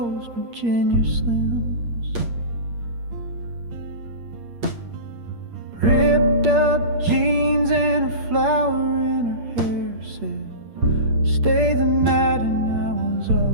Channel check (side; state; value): left; late; 8.6 ms